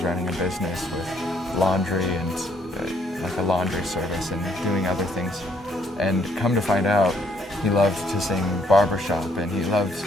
a business with laundry and like a laundry service and doing other things, and come to find out, he loved to sing barbershop and he loved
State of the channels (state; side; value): normal; both; correlation 0.68